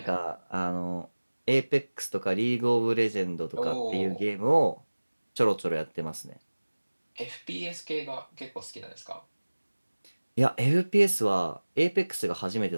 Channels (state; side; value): inverted; both; correlation -1.00